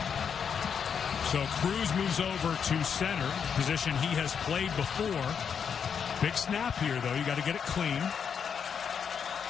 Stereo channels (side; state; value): right; quieter; 7.1 dB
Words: So Cruz moves over to center, position he has played before. Big snap here, though. You got to get it clean.